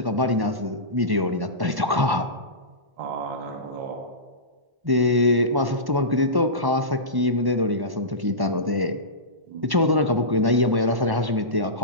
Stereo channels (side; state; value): left; late; 1.1 ms